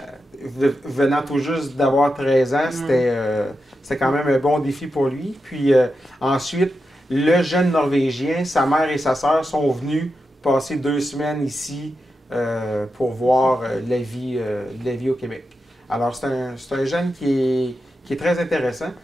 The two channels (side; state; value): both; normal; correlation 0.88